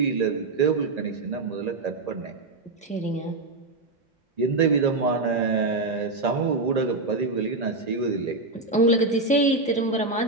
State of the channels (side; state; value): left; quieter; 3.2 dB